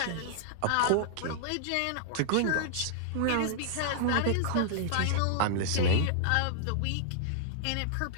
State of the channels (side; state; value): both; different; correlation -0.01